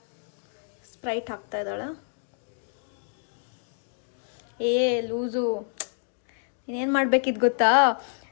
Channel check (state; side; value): silent; right; 59 dB below the other